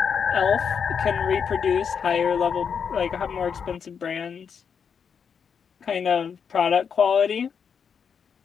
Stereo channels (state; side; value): quieter; right; 6.8 dB